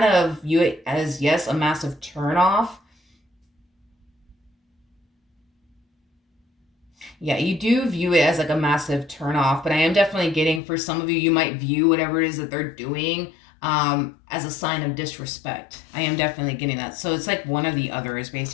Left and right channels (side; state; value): right; drops out; at 10.6 s